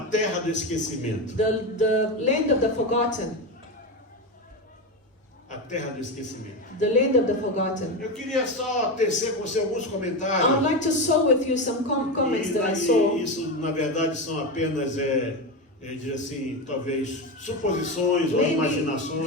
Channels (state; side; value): normal; both; correlation 0.16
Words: terra do esquecimento. the land of the forgotten, A terra do esquecimento. the land of the forgotten. Eu queria só tecer com você alguns I would comentários. like to share with you some comments that I E saw. isso, na verdade, são apenas, dizer assim, talvez suposições ou Maybe